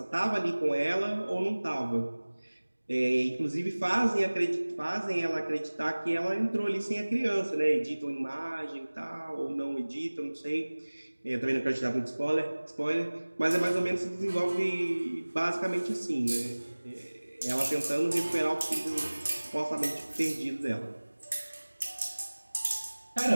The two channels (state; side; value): inverted; both; correlation -1.00